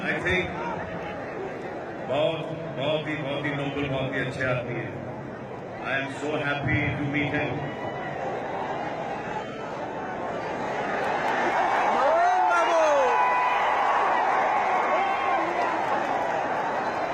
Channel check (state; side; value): identical; both; correlation 1.00